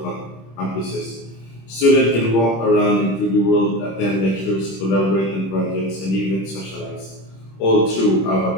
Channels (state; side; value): late; right; 26 ms